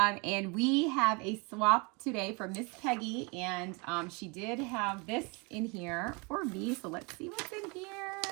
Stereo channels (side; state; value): left; quieter; 30.0 dB